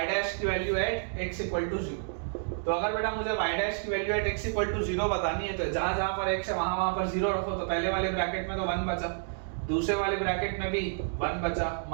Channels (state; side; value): silent; left; digital silence